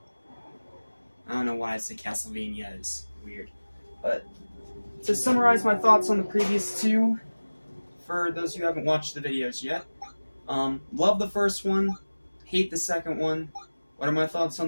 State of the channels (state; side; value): inverted; both; correlation -1.00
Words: I don't know why I said Castlevania, is weird. But to summarize my thoughts on the previous two, for those who haven't watched the videos yet, love the first one, hate the second one. What are my thoughts